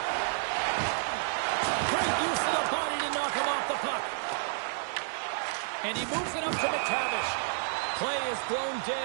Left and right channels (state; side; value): silent; left; digital silence